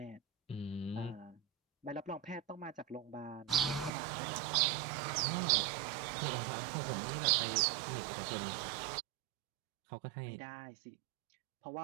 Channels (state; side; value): drops out; left; at 3.9 s